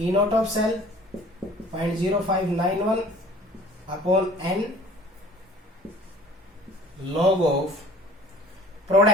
not of cell 0.0591 upon N log of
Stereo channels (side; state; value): both; normal; correlation 0.49